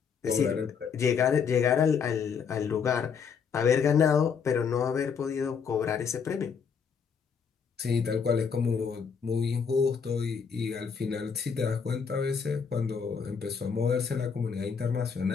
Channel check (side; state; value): right; quieter; 6.4 dB